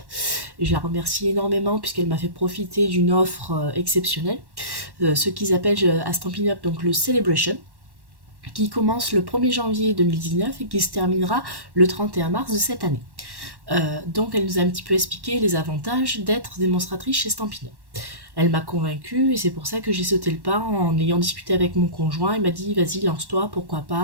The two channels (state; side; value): late; left; 1.1 ms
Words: Je la remercie énormément puisqu'elle m'a fait profiter d'une offre exceptionnelle, ce qu'ils appellent à Stampin' Up donc le Celebration, qui commence le 1er janvier 2019 et qui se terminera le 31 mars de cette année. Donc elle nous a un petit peu expliqué les avantages d'être démonstratrice chez Stampin' Up. Elle m'a convaincue et c'est pour ça que j'ai sauté le pas en ayant discuté avec mon conjoint. Il m'a dit vas-y lance-toi, pourquoi